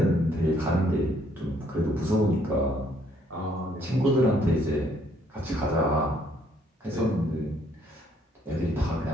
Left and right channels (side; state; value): both; normal; correlation 0.66